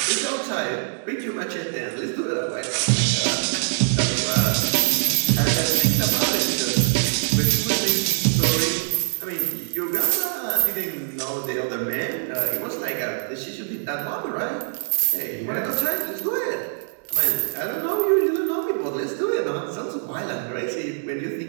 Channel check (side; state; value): left; silent; digital silence